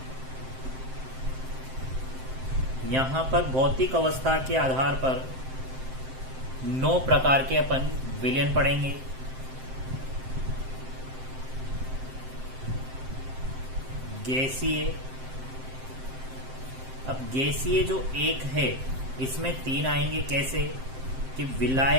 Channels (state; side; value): late; left; 7.7 ms